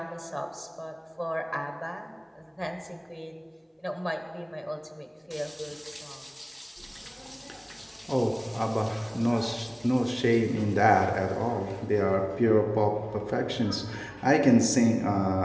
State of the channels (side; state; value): both; identical; correlation 1.00